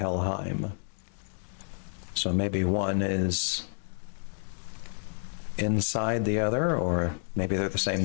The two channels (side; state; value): right; silent; 58 dB below the other